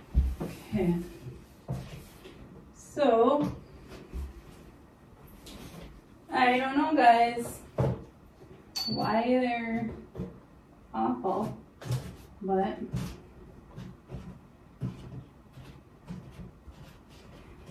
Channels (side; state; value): both; identical; correlation 1.00